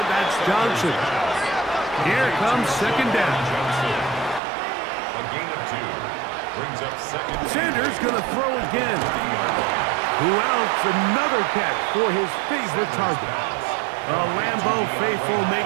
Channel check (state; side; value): drops out; left; at 4.4 s